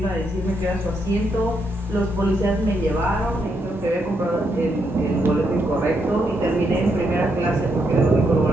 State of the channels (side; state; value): both; normal; correlation 0.79